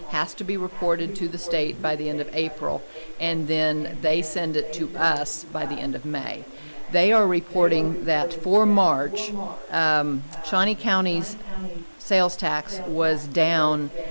has to be reported to the state by the end of April, and then they send it to us by the end of May. They are reporting that for March, Shawnee County's sales tax was down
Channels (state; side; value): inverted; both; correlation -1.00